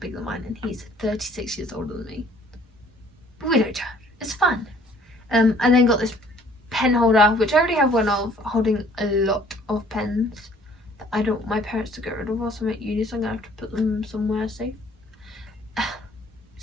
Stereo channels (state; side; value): normal; both; correlation 0.57